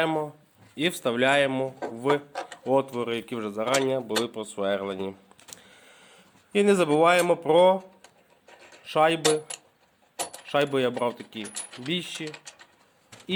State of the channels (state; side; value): identical; both; correlation 1.00